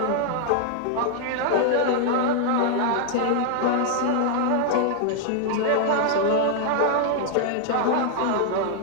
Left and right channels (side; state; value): both; different; correlation -0.01